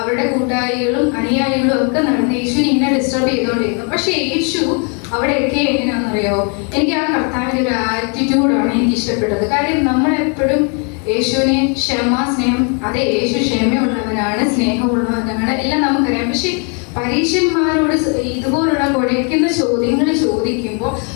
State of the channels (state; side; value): quieter; right; 37.7 dB